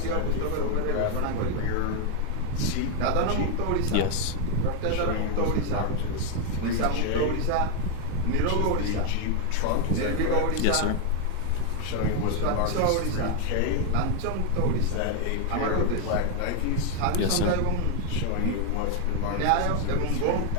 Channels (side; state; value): both; different; correlation 0.00